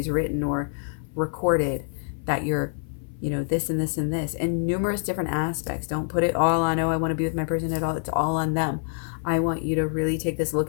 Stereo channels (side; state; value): right; silent; 56 dB below the other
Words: written or recorded that you're, this and this and this, and numerous different aspects. Don't put it all on, oh, I want to be with my person at all. It's all on them. I want you to really take this look